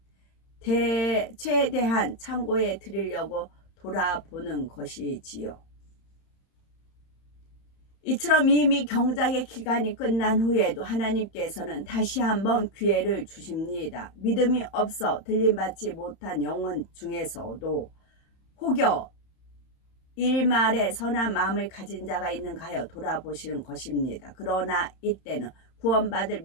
최대한 창고에 드리려고 돌아보는 것이지요. 이처럼 이미 경작의 기간이 끝난 후에도 하나님께서는 다시 한번 기회를 주십니다. 믿음이 없어 들림받지 못한 영혼 중에서도 혹여 일말에 선한 마음을 가진 자가 있는가 하여 돌아보시는 것입니다. 그러나 이때는 구원받을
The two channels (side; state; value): right; late; 31 ms